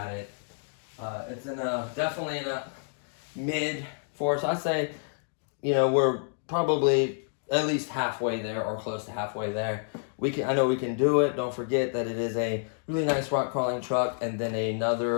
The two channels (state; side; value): silent; right; digital silence